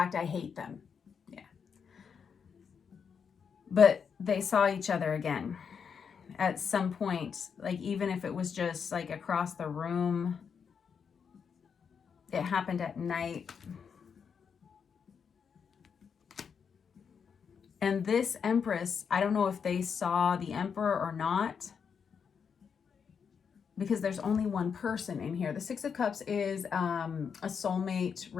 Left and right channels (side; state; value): right; quieter; 6.6 dB